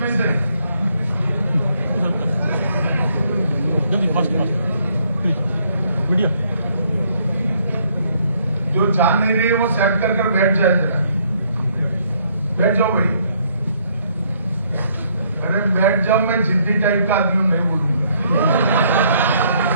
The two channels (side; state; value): both; inverted; correlation -0.69